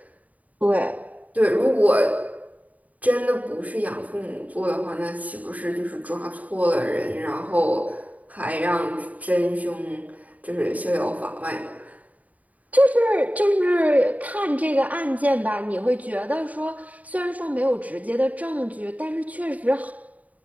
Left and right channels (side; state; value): left; late; 0.072 ms